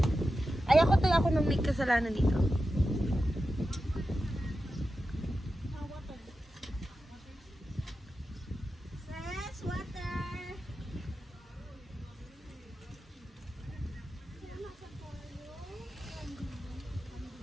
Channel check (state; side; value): normal; both; correlation 0.91